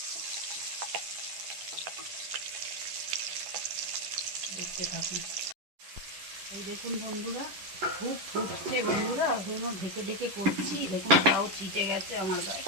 দেখতে থাকুন। এই দেখুন বন্ধুরা খুব ফুটছে বন্ধুরা, ওই জন্য ঢেকে ঢেকে করছি। দেখুন তাও চিটে গেছে আমার গায়ে।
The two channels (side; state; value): left; late; 11 ms